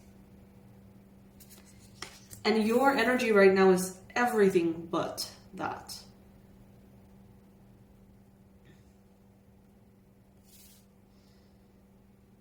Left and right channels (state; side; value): identical; both; correlation 1.00